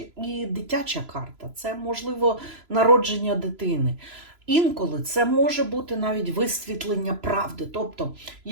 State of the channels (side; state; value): left; late; 3.0 ms